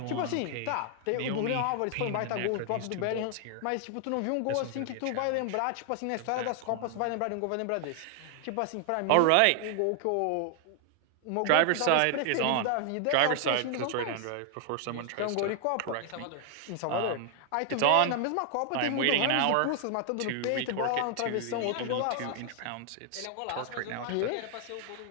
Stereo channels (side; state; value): both; different; correlation 0.00